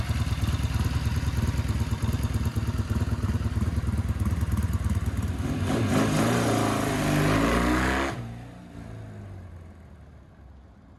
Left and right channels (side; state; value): both; identical; correlation 1.00